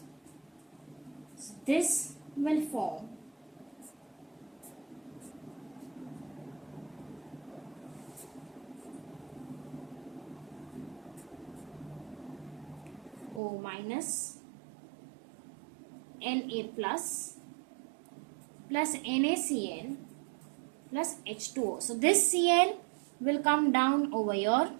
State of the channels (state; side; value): drops out; left; at 13.4 s